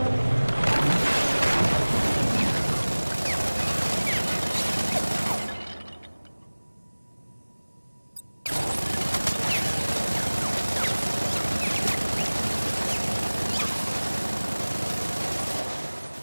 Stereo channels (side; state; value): both; inverted; correlation -1.00